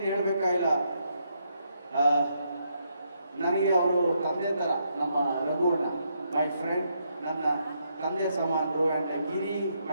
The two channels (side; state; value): both; inverted; correlation -0.77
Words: ಹೇಳಬೇಕಾಗಿಲ್ಲ, ನನಗೆ ಅವರು ತಂದೆ ಥರ. ನಮ್ಮ ರಘುವಣ್ಣ ಮೈ ಫ್ರೆಂಡ್, ನನ್ನ ತಂದೆ ಸಮಾನರು. And Giri